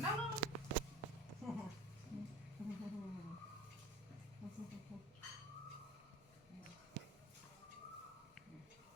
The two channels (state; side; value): normal; both; correlation 0.40